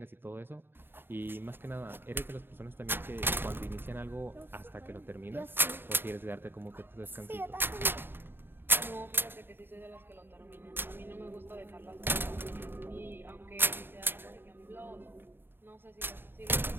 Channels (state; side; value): late; left; 0.10 ms